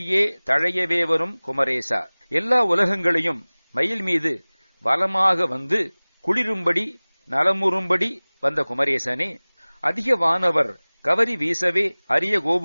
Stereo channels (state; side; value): inverted; both; correlation -1.00